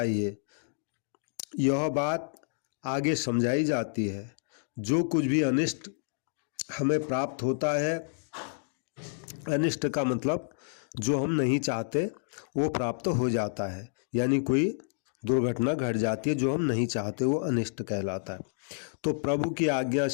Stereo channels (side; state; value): right; silent; digital silence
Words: यह बात आगे समझाई जाती है। जो कुछ भी अनिष्ट हमें प्राप्त होता है, अनिष्ट का मतलब जो हम नहीं चाहते वो प्राप्त हो जाता है, यानी कोई दुर्घटना घट जाती है जो हम नहीं चाहते, वो अनिष्ट कहलाता है। तो प्रभु की आज्ञा